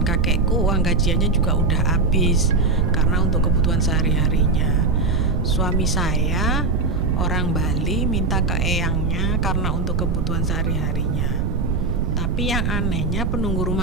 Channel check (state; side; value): noise; right; rumble, 2 dB below the sound